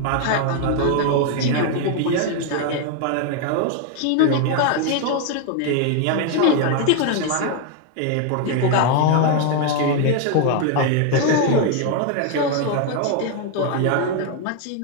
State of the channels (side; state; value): both; different; correlation 0.01